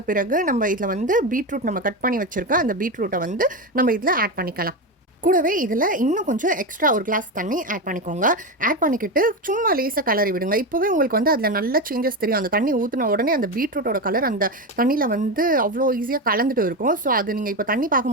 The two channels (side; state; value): both; normal; correlation 0.16